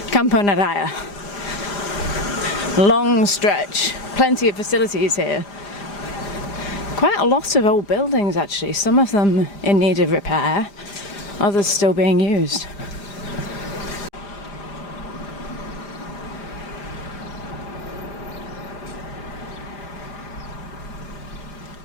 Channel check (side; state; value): right; late; 4.9 ms